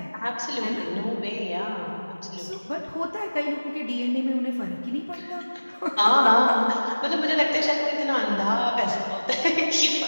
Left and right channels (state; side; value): inverted; both; correlation -1.00